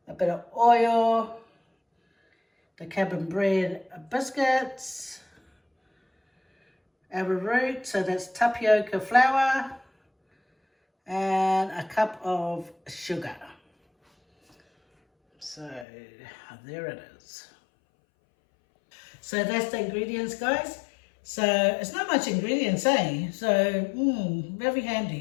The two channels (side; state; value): right; drops out; at 15.9 s